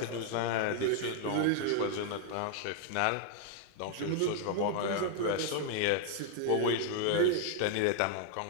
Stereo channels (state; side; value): different; both; correlation 0.00